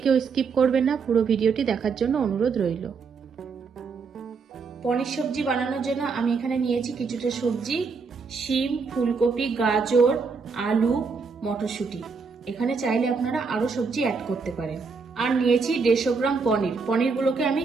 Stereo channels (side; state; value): left; quieter; 5.0 dB